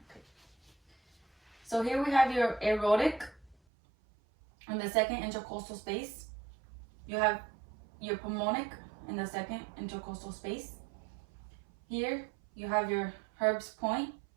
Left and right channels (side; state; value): left; drops out; at 3.6 s